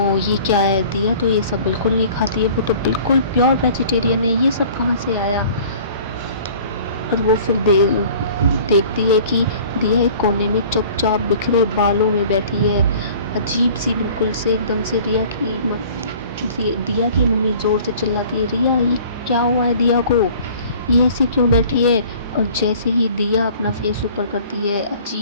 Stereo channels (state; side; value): inverted; both; correlation -0.49